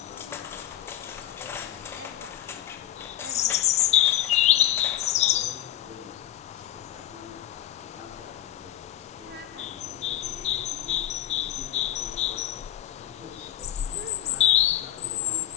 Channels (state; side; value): quieter; right; 13.2 dB